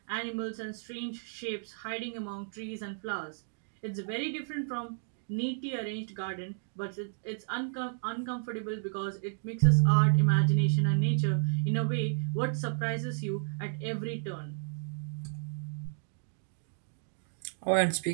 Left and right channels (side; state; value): left; silent; digital silence